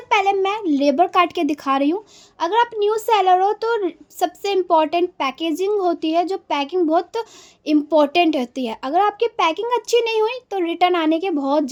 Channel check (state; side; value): identical; both; correlation 1.00